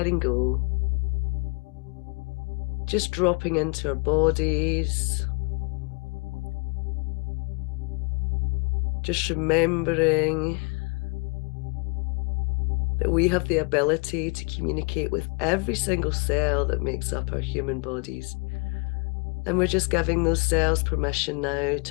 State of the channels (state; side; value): quieter; right; 33.1 dB